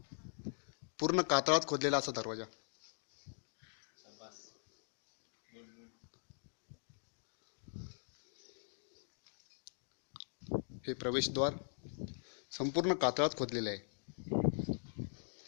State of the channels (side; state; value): right; silent; digital silence